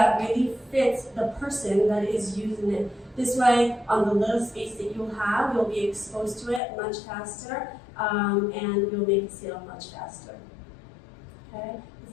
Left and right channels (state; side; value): drops out; right; at 6.6 s